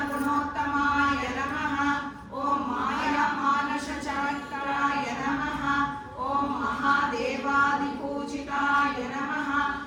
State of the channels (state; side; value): identical; both; correlation 1.00